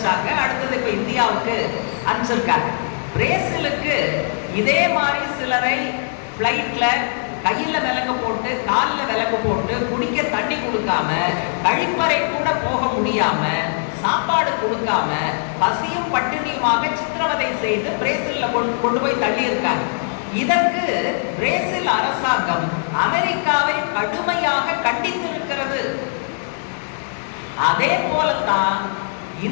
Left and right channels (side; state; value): right; silent; 65 dB below the other